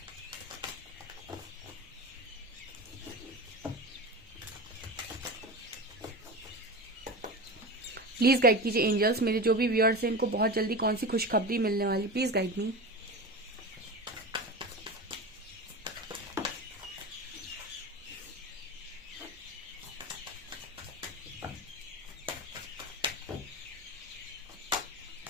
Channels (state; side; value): normal; both; correlation 0.27